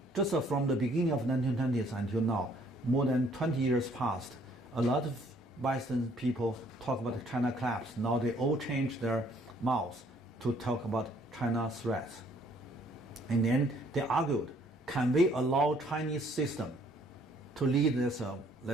just from the beginning of 1920s until now, more than 20 years passed, a lot of Western people talk about China collapse. Now they all change their mouths to talk about China threats. And then they argued, can we allow Chinese system to lead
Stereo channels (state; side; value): normal; both; correlation 0.62